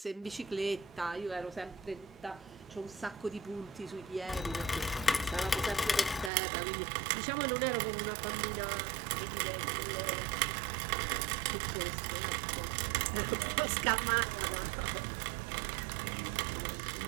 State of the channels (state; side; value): drops out; left; at 6.3 s